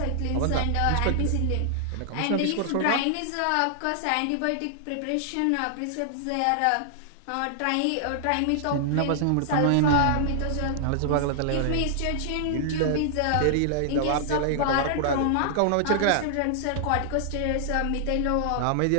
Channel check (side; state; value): both; different; correlation -0.01